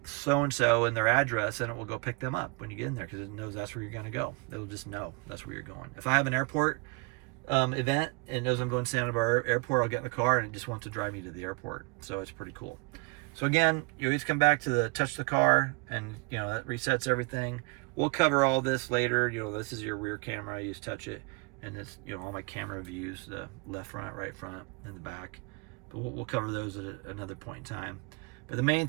so-and-so and their address, and it will go pick them up when you get in there because it knows that's where you're going to go. It'll just know that's where you're going. If I have an airport event and it knows I'm going to Santa Barbara Airport, I'll get in the car and it just wants to drive me to the airport. So it's pretty cool. So again, you always come back to the touch the car, and you know that resets everything. We'll cover all this later. You know, this is your rear camera. You just touch it, and it's, you know, all my camera views, the left front, right front, and the back. But we'll cover those at another point in time. But the main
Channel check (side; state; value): left; quieter; 28.3 dB